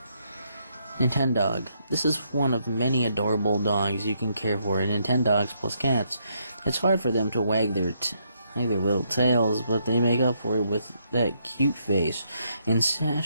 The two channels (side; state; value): both; inverted; correlation -0.75